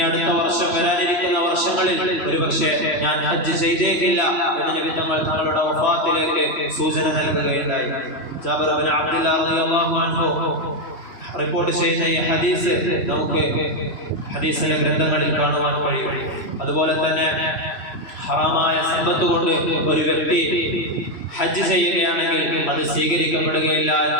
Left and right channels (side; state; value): right; late; 2.7 ms